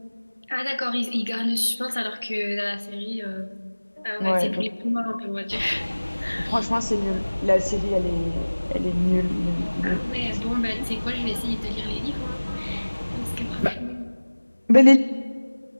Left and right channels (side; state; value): both; inverted; correlation -1.00